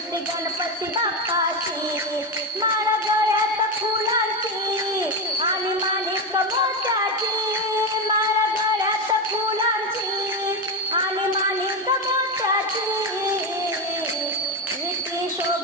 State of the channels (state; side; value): normal; both; correlation 0.13